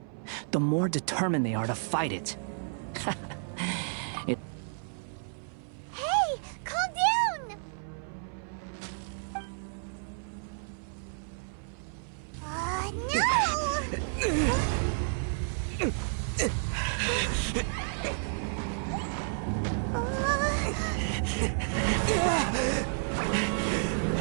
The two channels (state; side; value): silent; left; 57 dB below the other